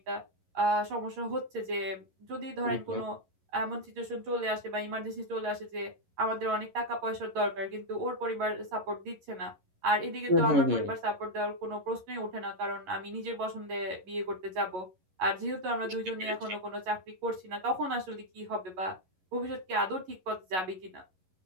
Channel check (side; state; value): left; late; 11 ms